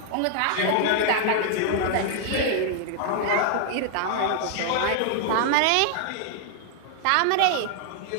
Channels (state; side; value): different; both; correlation 0.00